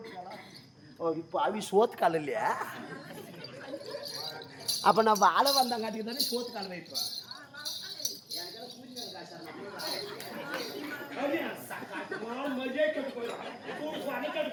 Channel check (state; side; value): identical; both; correlation 1.00